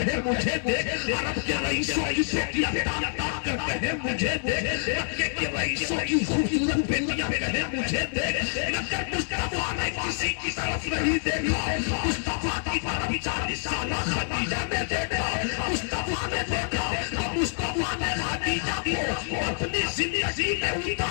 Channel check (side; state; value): right; silent; digital silence